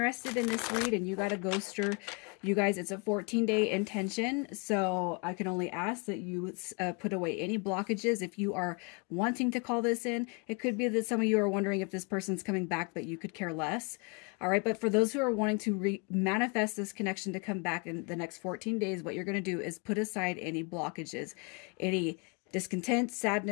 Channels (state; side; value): quieter; right; 32.8 dB